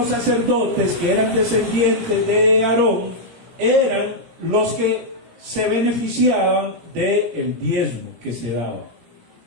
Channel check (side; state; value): left; late; 17 ms